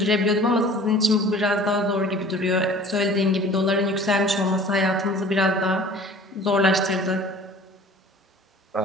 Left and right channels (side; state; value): both; normal; correlation 0.46